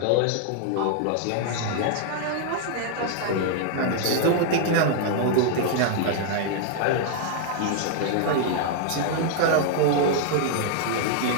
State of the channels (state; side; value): different; both; correlation 0.00